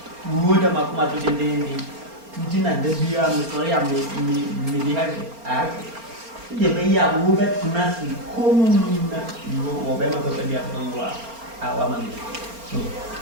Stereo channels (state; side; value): late; left; 4.3 ms